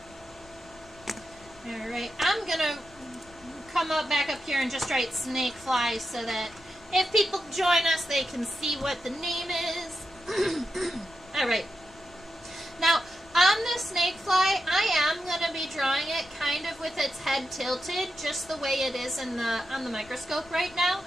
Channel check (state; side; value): noise; left; rumble, 24 dB below the sound